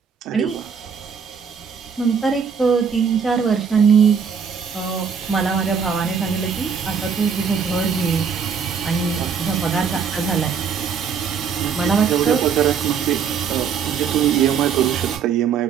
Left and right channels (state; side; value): quieter; left; 6.6 dB